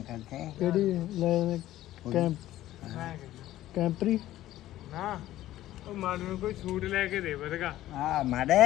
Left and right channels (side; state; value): right; quieter; 14.4 dB